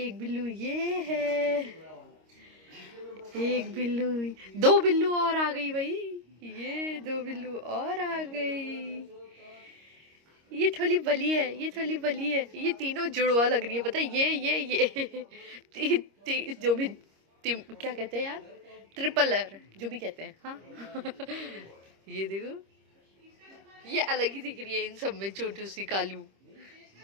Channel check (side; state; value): left; late; 26 ms